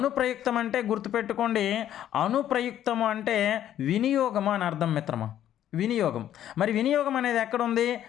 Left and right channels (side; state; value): right; quieter; 11.3 dB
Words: అంటే గుర్తుపెట్టుకోండి, అనుప్రయుక్తము అంటే వినియోగము అని అర్థం మిత్రమా. వినియోగం. మరి వినియోగం అనేది ఎక్కడుంది?